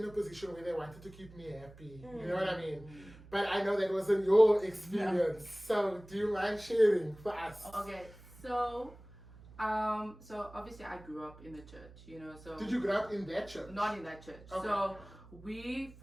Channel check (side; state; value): right; noise; hum, 20 dB below the sound